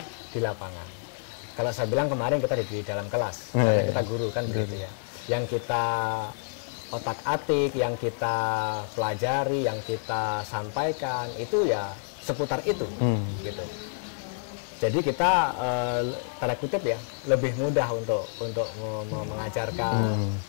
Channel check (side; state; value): right; silent; 57 dB below the other